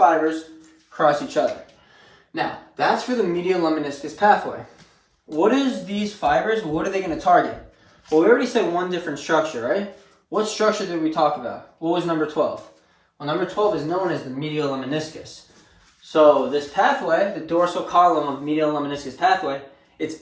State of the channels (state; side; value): identical; both; correlation 1.00